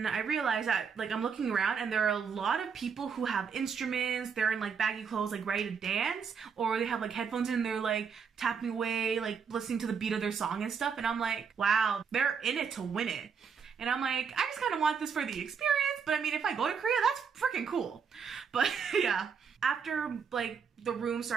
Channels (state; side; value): quieter; left; 6.3 dB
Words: I realized that like I'm looking around and there are a lot of people who have instruments, they're in like baggy clothes, like ready to dance, or they have like headphones in and they're like tapping away, like listening to the beat of their song and stuff. And I'm like, wow, they're in it to win it. And I'm like, I just kind of want this for the experience, but I mean, if I go to Korea, that's freaking cool. But yeah, after like the room